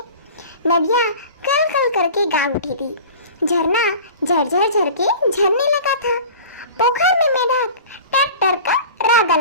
नदियाँ कल कल करके गा उठी थी। झरना झरझर झर के झरने लगा था। पोखर में मेढक टर टर का राग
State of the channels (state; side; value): inverted; both; correlation -0.39